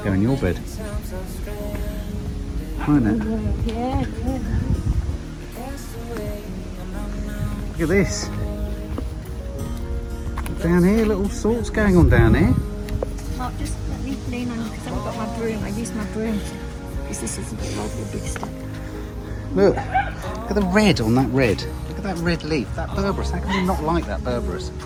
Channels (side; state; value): both; identical; correlation 1.00